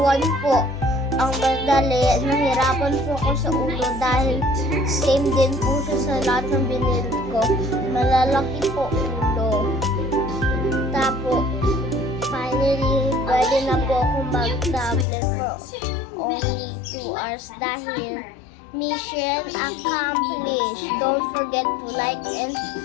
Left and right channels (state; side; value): drops out; right; at 15.1 s